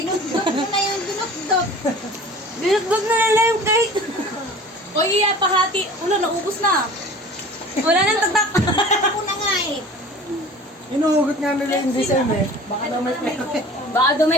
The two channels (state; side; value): normal; both; correlation 0.43